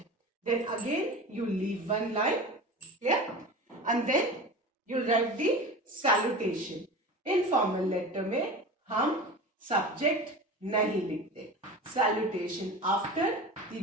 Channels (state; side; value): normal; both; correlation 0.32